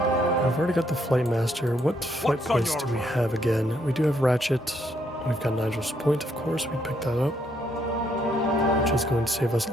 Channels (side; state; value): both; normal; correlation 0.72